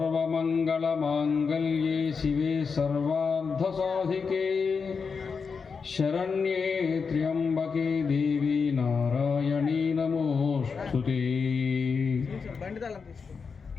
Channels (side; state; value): right; quieter; 5.4 dB